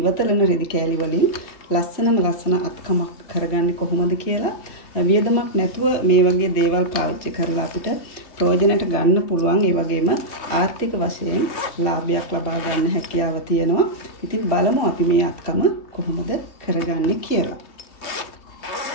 රෙදි කෑලි වලින් ලස්සන අත්කමක් කරගන්නේ කොහොමද කියලා. වියදමක් නැතුව මේ වගේ දේවල් පාවිච්චි කරලා අපිට ප්‍රයෝජනට ගන්න පුළුවන්. ඒ වගේම ආර්ථික වශයෙන් ලාභයක් ලබා ගන්න හැකියාව තියෙනවා. ඉතින් බලමු අපි මේ අත්කම කොහොමද කරගන්නේ කියලා.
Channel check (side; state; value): right; late; 3.0 ms